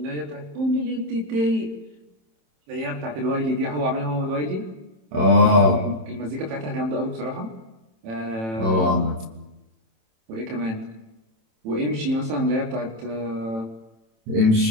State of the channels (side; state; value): left; late; 27 ms